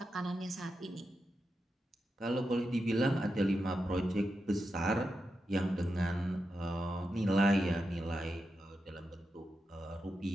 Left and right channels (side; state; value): both; normal; correlation 0.88